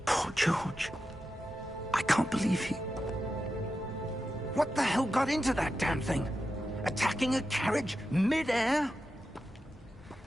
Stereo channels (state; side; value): normal; both; correlation 0.90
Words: Poor George. I can't believe he... What the hell got into that damn thing? Attacking a carriage mid-air?